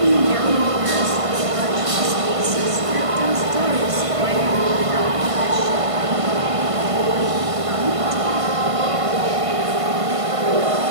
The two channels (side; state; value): left; late; 1.5 ms